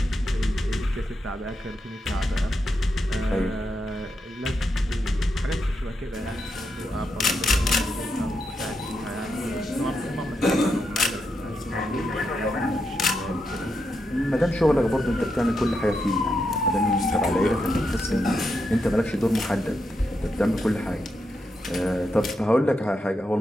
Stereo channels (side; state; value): both; normal; correlation 0.84